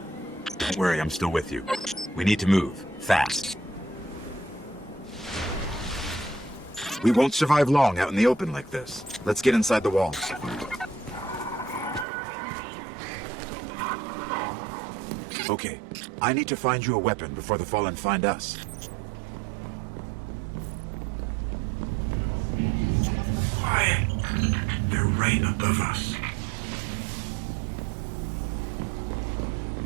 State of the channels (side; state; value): left; drops out; at 12.1 s